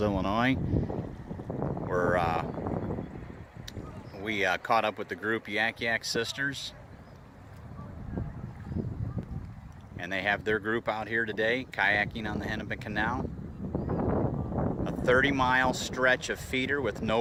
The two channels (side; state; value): both; identical; correlation 1.00